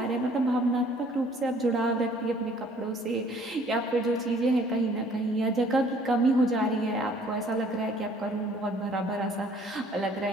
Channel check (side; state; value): both; normal; correlation 0.58